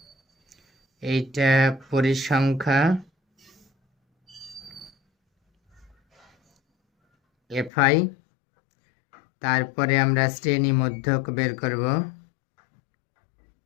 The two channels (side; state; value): right; drops out; at 7.7 s